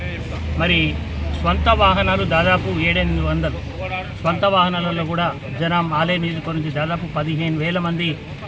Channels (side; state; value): both; identical; correlation 1.00